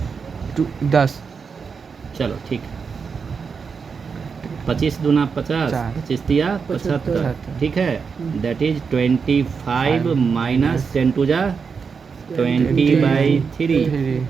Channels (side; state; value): left; quieter; 5.6 dB